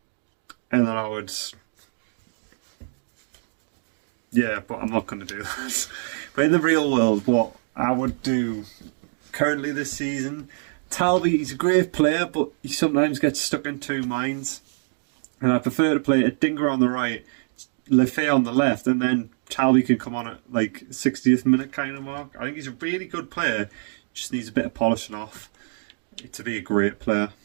And then I would... Yeah, but I'm not going to do that. But in the real world, what I would do currently this season, Talby, he's a great player, but he sometimes gets stuck in two minds. And I prefer to play a Dinger on the right, Lefebvre on the left, and then Talby can come on at like 60th minute kind of mark. I think he's a really good player, just needs a bit of polishing off to be a great player.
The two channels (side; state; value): left; silent; digital silence